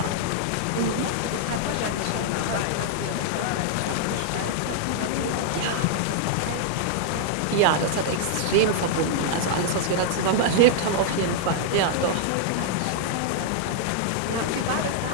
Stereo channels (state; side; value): different; both; correlation -0.01